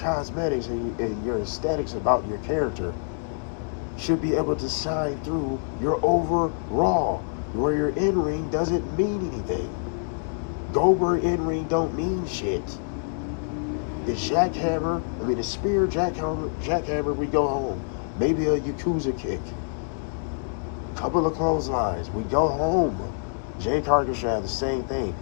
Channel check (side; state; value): right; silent; digital silence